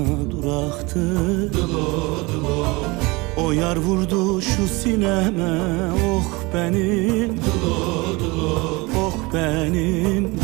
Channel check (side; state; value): left; quieter; 24.4 dB